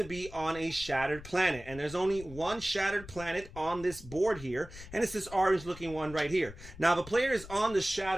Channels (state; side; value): noise; left; rumble, 15 dB below the sound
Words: be on a shattered planet. And there's only one shattered planet on this board here, and it's this orange looking one right here. Now, if a player is on the